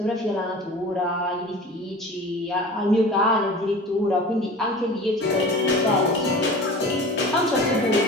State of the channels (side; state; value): both; normal; correlation 0.38